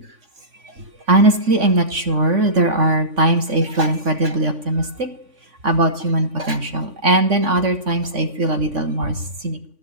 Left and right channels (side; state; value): left; late; 3.5 ms